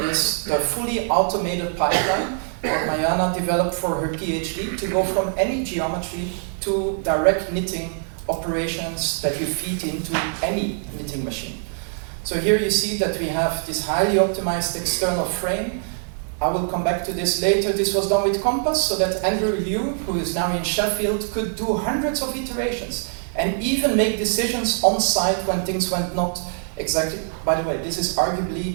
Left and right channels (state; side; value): silent; left; digital silence